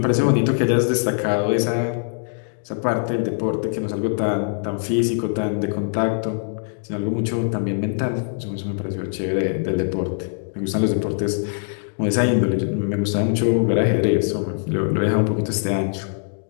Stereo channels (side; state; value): right; silent; digital silence